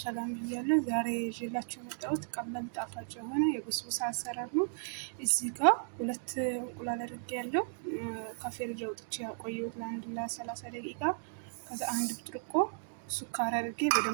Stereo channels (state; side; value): silent; left; digital silence